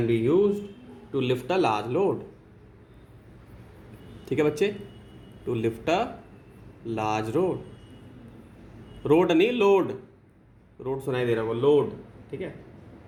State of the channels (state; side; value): identical; both; correlation 1.00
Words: to lift a large load, ठीक है बच्चे, to lift a large road नहीं लोड, रोड सुनाई दे रहा है वो लोड, ठीक है,